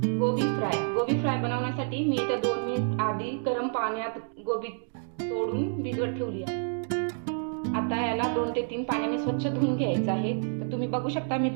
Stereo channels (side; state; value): left; silent; 59 dB below the other